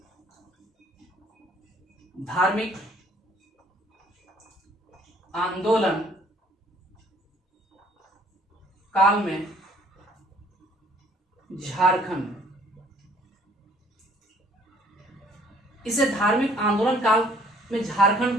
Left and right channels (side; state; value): both; normal; correlation 0.59